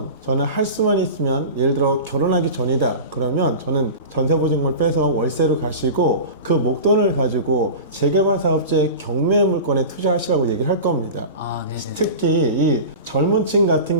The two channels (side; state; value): both; inverted; correlation -0.31